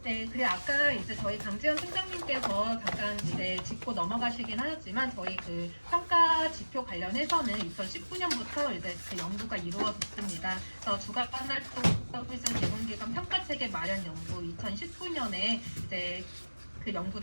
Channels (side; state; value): both; inverted; correlation -1.00